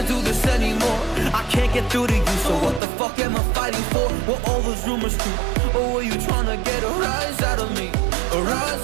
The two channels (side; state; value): left; drops out; at 2.8 s